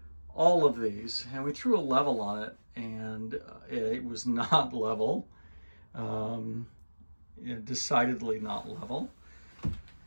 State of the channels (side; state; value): both; inverted; correlation -1.00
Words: all of these, and we threw a level on it, and it was not level, decidedly not level.